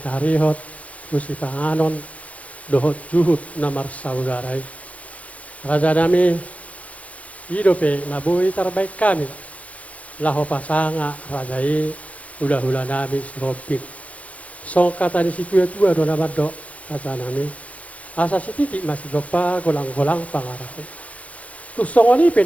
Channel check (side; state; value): right; late; 0.066 ms